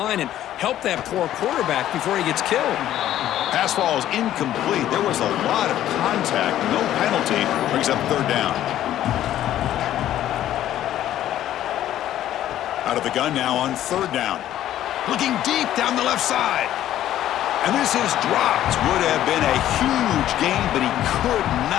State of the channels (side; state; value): right; quieter; 12.4 dB